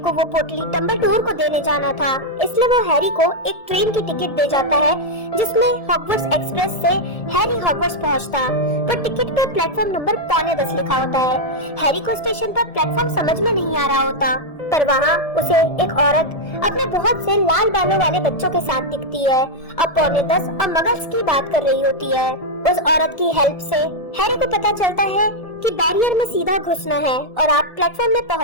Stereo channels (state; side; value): late; right; 1.7 ms